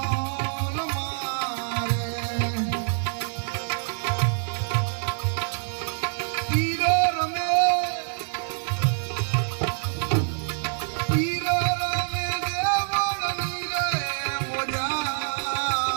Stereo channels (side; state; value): left; silent; 61 dB below the other